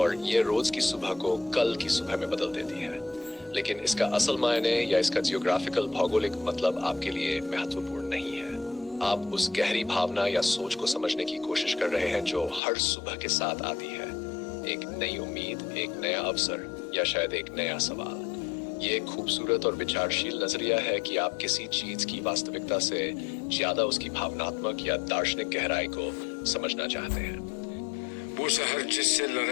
یہ روز کی صبح کو کل کی صبح میں بدل دیتی ہے۔ لیکن اس کا اصل معنی یا اس کا جیوگرافیکل بھوگولک مطلب آپ کے لیے مہتوپورن نہیں ہے۔ آپ اس گہری بھاونا یا سوچ کو سمجھنے کی کوشش کر رہے ہیں جو ہر صبح کے ساتھ آتی ہے، ایک نئی امید، ایک نیا اوسر، یا شاید ایک نیا سوال۔ یہ ایک خوبصورت اور وچارشیل نظریہ ہے کہ آپ کسی چیز کی واستوکتا سے زیادہ اس کی بھاوناتمک یا دارشنک گہرائی کو سمجھنا چاہتے ہیں۔ وہ سحر جس سے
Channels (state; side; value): drops out; right; at 12.6 s